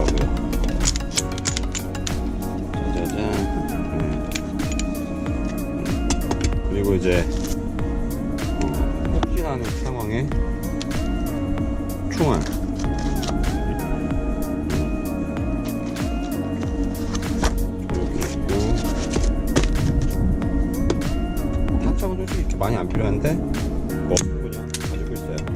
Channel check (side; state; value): both; identical; correlation 1.00